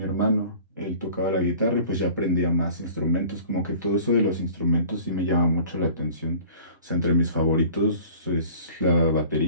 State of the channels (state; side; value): inverted; both; correlation -0.46